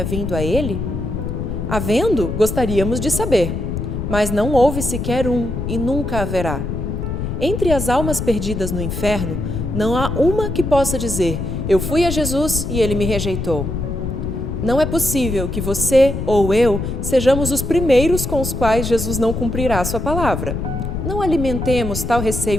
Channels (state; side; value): noise; left; rumble, 4 dB below the sound